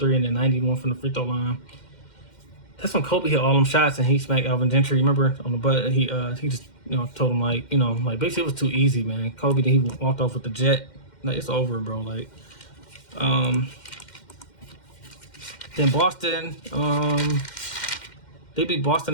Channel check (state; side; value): late; right; 2.1 ms